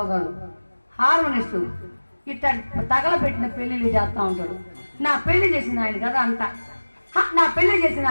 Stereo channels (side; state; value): both; inverted; correlation -1.00